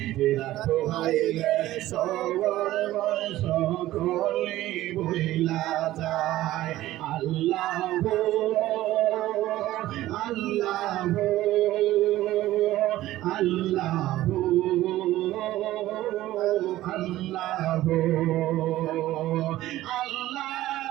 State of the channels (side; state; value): left; quieter; 15.3 dB